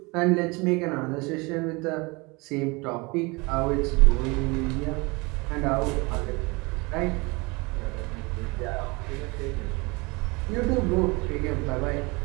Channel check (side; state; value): left; quieter; 26.5 dB